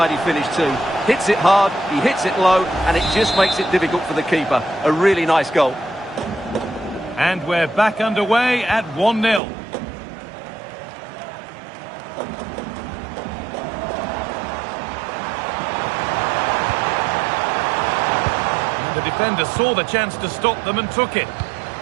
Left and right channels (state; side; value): drops out; left; at 9.4 s